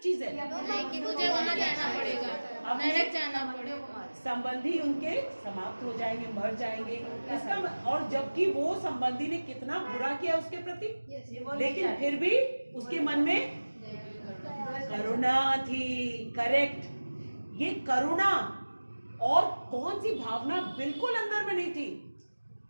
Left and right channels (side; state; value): both; inverted; correlation -1.00